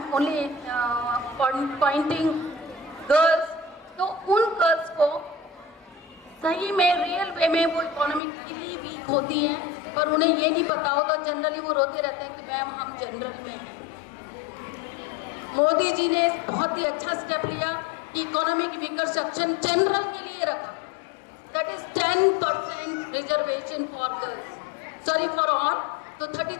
only pointing girls. तो उन गर्ल्स को सही में रियल वे में वो इकोनॉमिकली वीक होती हैं, पर उन्हें ये नहीं पता होता। जनरली वो रोते रहते हैं कि मैम हम जनरल में हैं। मोदी जी ने बहुत ही अच्छा स्टेप लिया कि इकोनॉमिक वीकर सेक्शन जनरल के लिए रखा। That is 10% reservation for girls, sorry for all. तो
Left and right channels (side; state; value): right; drops out; at 8.2 s